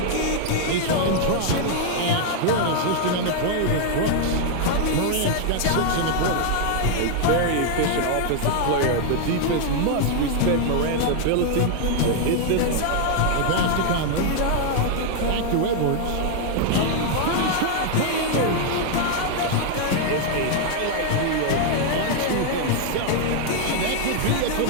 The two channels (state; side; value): different; both; correlation 0.00